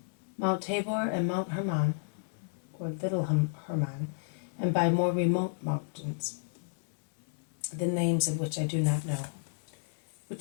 Mount Tabor and Mount Hermon, or Little Hermon, and by more remote mountains, the names of which I do not know,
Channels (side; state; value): right; silent; digital silence